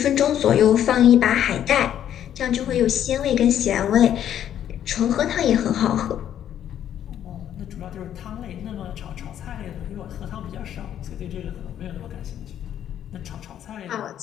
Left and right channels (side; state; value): right; quieter; 10.4 dB